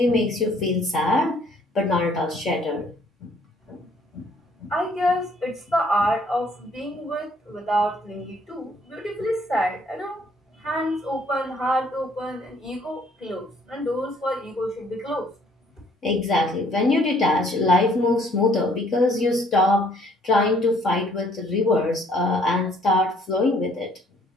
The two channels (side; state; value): both; normal; correlation 0.62